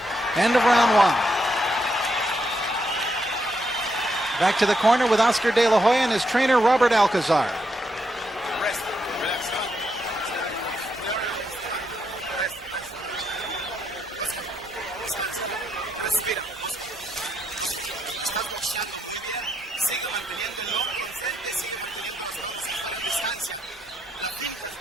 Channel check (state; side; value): normal; both; correlation 0.79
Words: End of round one. Back to the corner with Oscar De La Hoya and his trainer, Robert Alcazar.